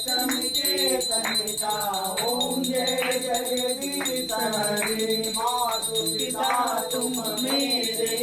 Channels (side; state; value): both; identical; correlation 1.00